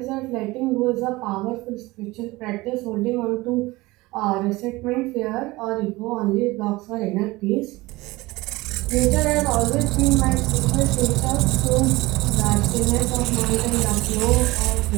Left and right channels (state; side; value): quieter; left; 20.8 dB